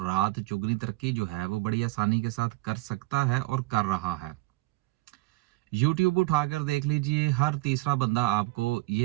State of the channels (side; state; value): left; quieter; 20.9 dB